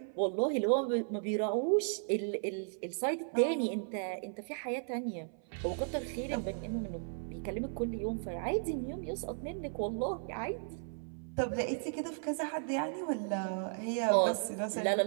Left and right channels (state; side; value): silent; left; 54 dB below the other